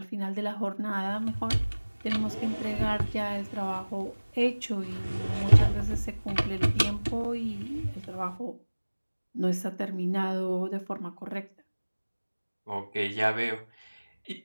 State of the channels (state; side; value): inverted; both; correlation -1.00